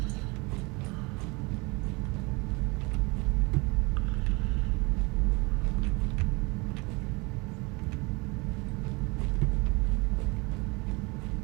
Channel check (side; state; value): left; quieter; 26.9 dB